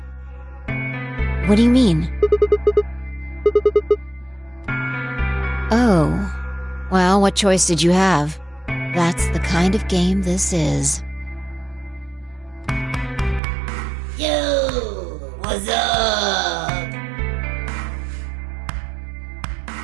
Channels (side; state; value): left; drops out; at 13.4 s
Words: What do you mean? Oh, well, what choice did you have? That's the kind of game this is. Yo, what's up?